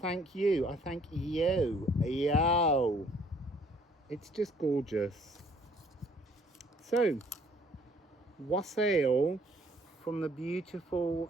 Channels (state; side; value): normal; both; correlation 0.61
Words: you. I thank you. Yo. It's just gorgeous. So, Wassail from the beautiful